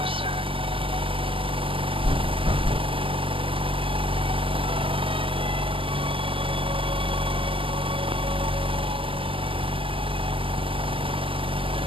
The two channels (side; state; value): left; late; 0.25 ms